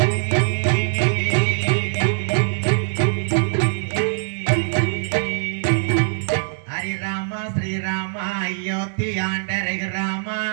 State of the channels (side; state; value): left; silent; digital silence